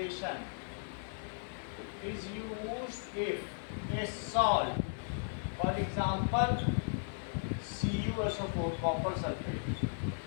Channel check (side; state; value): right; silent; digital silence